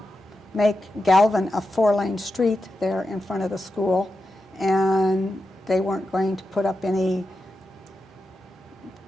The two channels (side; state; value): both; normal; correlation 0.89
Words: make Galvin a 4-lane street there in front of the school, and they weren't going to put up any